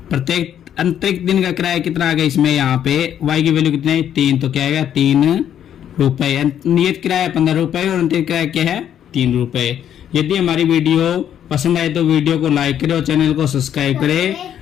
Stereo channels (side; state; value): right; quieter; 9.8 dB